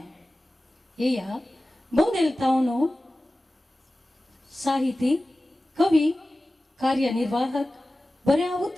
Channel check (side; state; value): both; normal; correlation 0.96